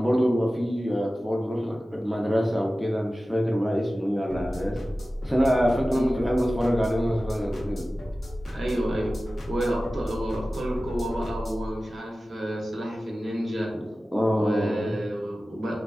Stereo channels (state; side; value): normal; both; correlation 0.96